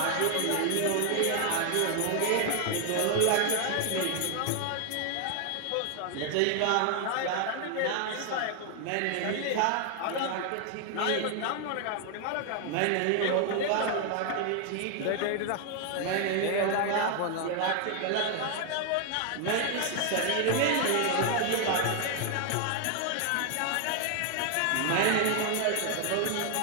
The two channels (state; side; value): different; both; correlation 0.00